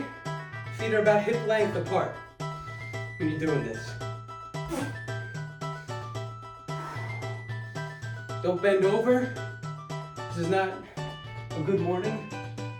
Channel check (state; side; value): identical; both; correlation 1.00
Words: feet are about hip length apart when you're doing this. Don't bend over. This is not a good morning.